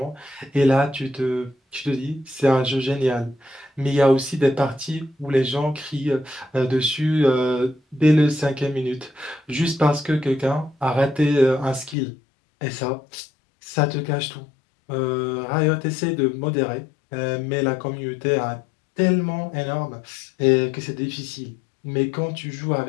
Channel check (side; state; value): right; drops out; at 12.0 s